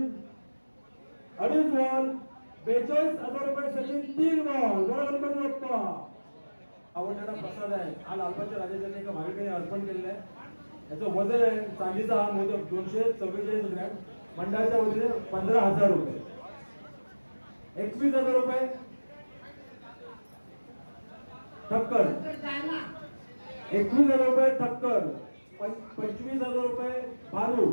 अडीच बॉल 42,000 रुपये सचिन तीन बॉल बरोबर बाप्पा आवडणारा प्रसाद आहे हा लालबागच्या राजाच्या एका भाविकाने अर्पण केलेला आहे याचं वजन आहे चांदीचा हा मोदक 244 ग्रॅम मंडळाच्या वतीने 15,000 रुपये 21,000 रुपये ठक्कर 21,000 रुपये ठक्कर 25,000 रुपये भालू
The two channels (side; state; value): both; inverted; correlation -1.00